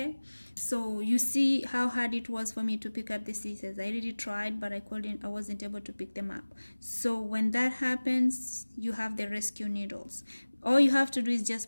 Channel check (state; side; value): inverted; both; correlation -1.00